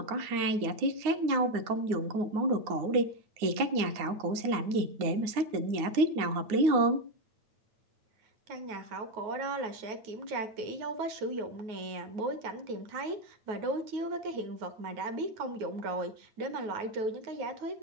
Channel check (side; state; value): left; late; 9.6 ms